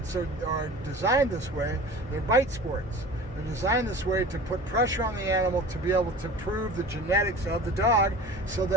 are designed this way. They're bite sports. They're designed this way to put pressure on the animal to be able to prove the genetics of the dog so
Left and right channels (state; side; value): normal; both; correlation 0.39